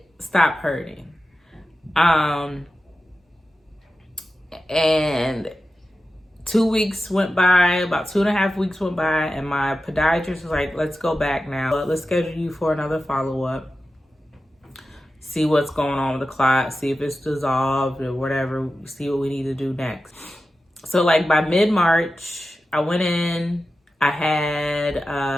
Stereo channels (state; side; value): normal; both; correlation 0.93